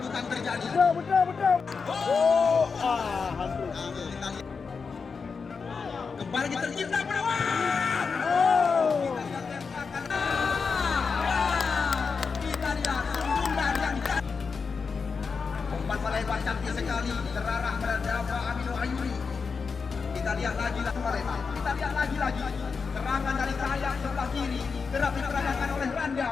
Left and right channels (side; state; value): right; quieter; 5.2 dB